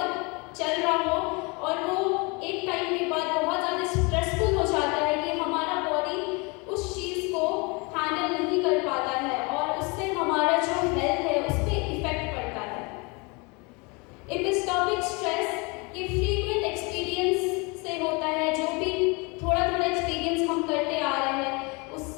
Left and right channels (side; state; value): right; quieter; 29.1 dB